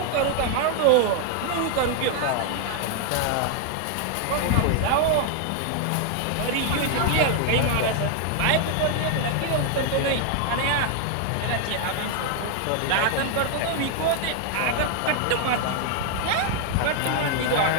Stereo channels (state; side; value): different; both; correlation 0.00